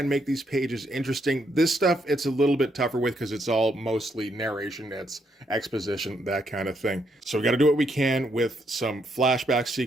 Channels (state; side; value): normal; both; correlation 0.76